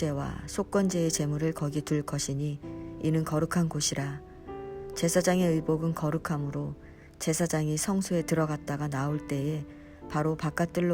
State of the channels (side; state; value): both; identical; correlation 1.00